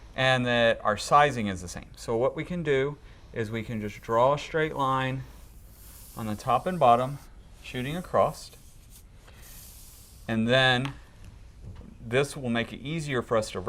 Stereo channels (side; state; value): both; identical; correlation 1.00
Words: and that our sizing is the same. So what we can do is we can just draw a straight line on the top and bottom, shooting across. And then this will make it easier for us to